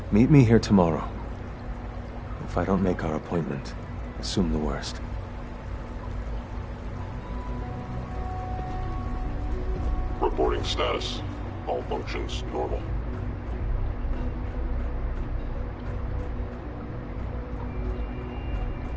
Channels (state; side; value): identical; both; correlation 1.00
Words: Meet me here tomorrow. If I don't make our appointment, assume the worst. Reporting status. All functions normal.